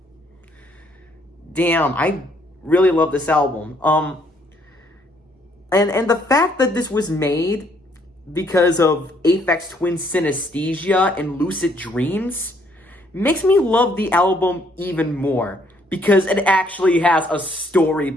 Damn, I really love this album. And the fact that this was made because of Aphex Twin synesthesia and lucid dreams makes me love the album even more, because it actually has a story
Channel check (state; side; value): normal; both; correlation 0.67